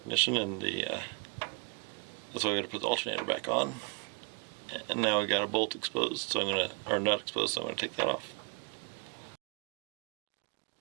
and that's why we got to put the alternator back on. And now we got a bolt exposed, so not exposed, so I'm gonna take that off.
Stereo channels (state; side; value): quieter; left; 33.2 dB